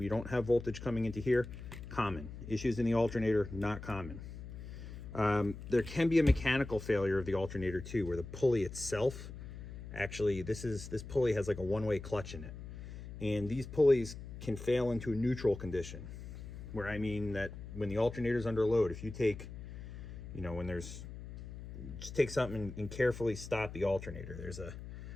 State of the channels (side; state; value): left; noise; hum, 11 dB below the sound